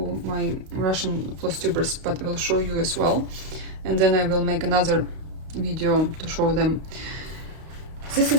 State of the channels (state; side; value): late; left; 32 ms